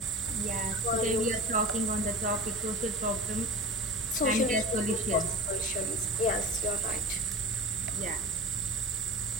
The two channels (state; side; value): normal; both; correlation 0.32